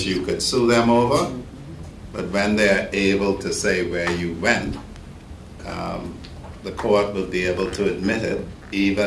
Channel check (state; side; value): identical; both; correlation 1.00